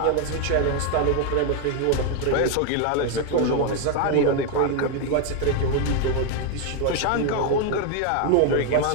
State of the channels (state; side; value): different; both; correlation 0.01